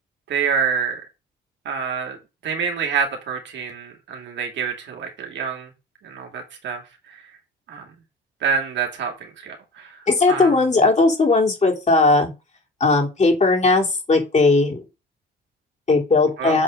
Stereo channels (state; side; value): normal; both; correlation 0.35